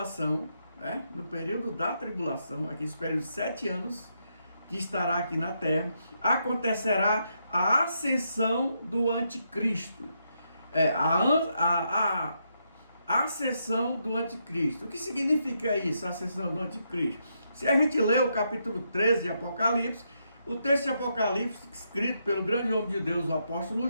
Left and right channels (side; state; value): both; inverted; correlation -0.80